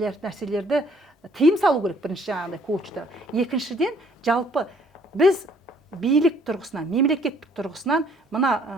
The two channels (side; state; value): both; normal; correlation 0.62